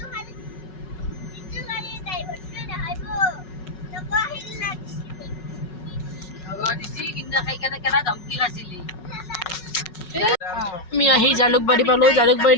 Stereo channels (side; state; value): right; late; 5.4 ms